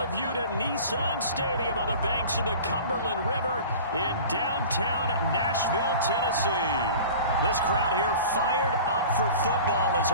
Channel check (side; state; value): both; inverted; correlation -0.40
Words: you to Nissan Stadium on the banks of the Cumberland River in downtown Nashville, Tennessee. This crowd here fired up for football as